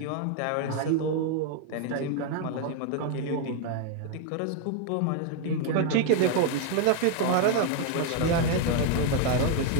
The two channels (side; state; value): both; different; correlation 0.01